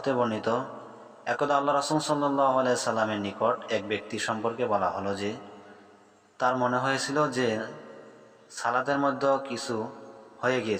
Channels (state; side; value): identical; both; correlation 1.00